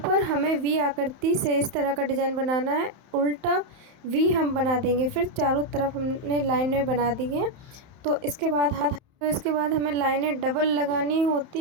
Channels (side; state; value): left; late; 31 ms